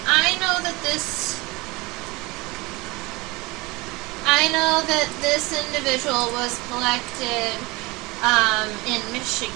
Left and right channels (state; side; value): quieter; left; 23.5 dB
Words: I know that this individual was collected in